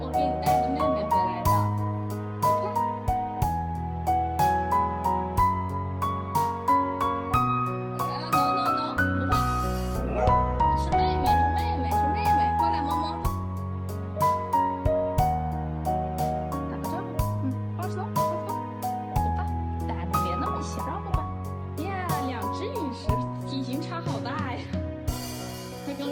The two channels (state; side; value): identical; both; correlation 1.00